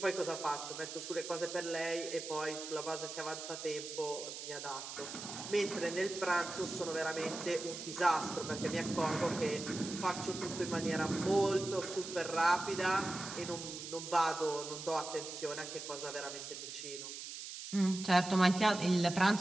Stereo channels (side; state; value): right; noise; hiss, 9 dB below the sound